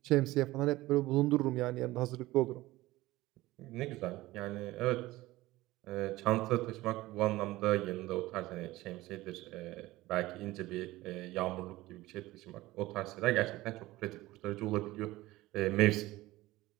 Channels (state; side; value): quieter; left; 18.2 dB